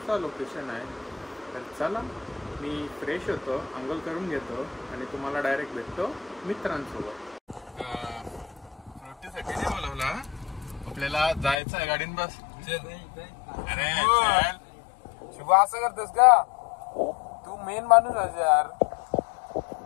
लोकेशन आहे. तर चला, मी फ्रेश होतो, अंघोळ करून घेतो आणि तुम्हाला डायरेक्ट भेटतो मित्रांसोबत. फ्रुटीसाठी नाही बोलवला, आपल्याला जायचं आहे गाडीन. बस अरे शुभ, असं करतोस का तू? मेन माणूस आहे यार.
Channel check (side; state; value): right; drops out; at 11.6 s